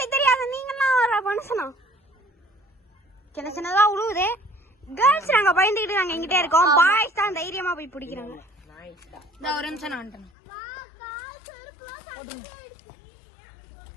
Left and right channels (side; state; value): right; drops out; at 10.3 s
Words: தெரியாத நீங்கலாம் ஒரு மனுஷனா? சின்ன சின்னதா உழுவுது. கேர்ள்ஸ் நாங்க பயந்துக்கிட்டு நாங்க எங்கிட்டே இருக்கோம். பாய்ஸ் தான் தைரியமா போய் பிடிக்கிறாங்க. இந்த ஒரு நிமிஷம் நான் வந்துட்டேன்.